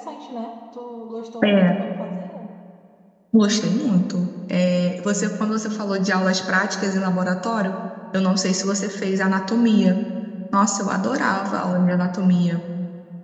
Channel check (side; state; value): both; identical; correlation 1.00